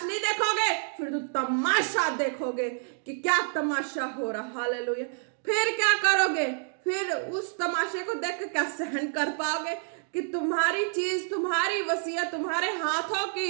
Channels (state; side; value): silent; left; digital silence